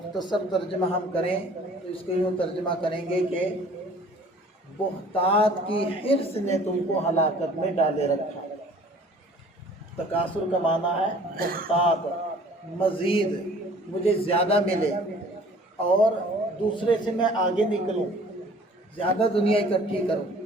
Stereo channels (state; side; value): normal; both; correlation 0.51